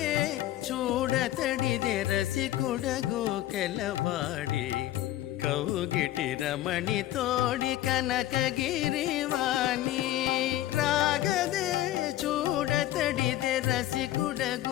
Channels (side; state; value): right; quieter; 14.5 dB